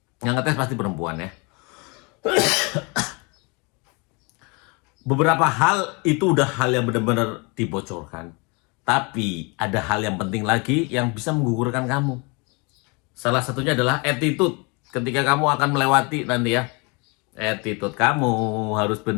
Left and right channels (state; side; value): quieter; right; 30.3 dB